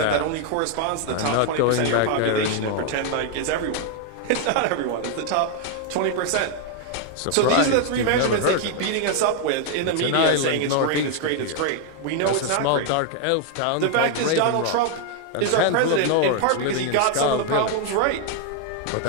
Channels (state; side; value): different; both; correlation 0.00